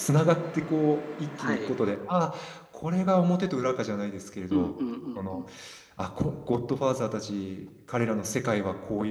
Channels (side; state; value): both; identical; correlation 1.00